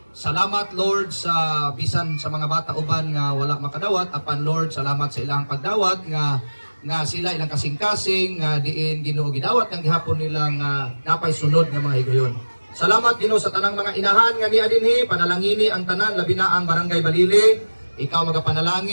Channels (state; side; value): inverted; both; correlation -1.00